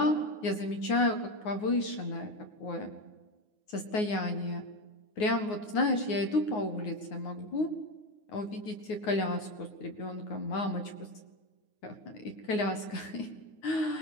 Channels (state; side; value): late; right; 9.5 ms